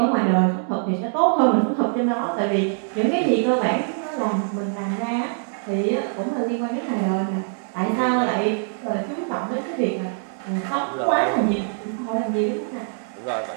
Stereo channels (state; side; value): silent; left; digital silence